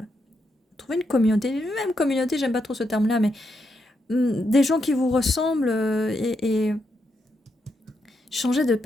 Trouvez une communauté, même communauté, j'aime pas trop ce terme-là, mais des gens qui vous ressemblent et changer de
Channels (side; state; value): both; normal; correlation 0.82